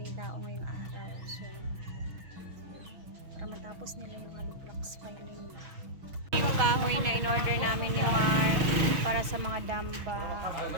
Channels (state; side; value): late; left; 6.2 ms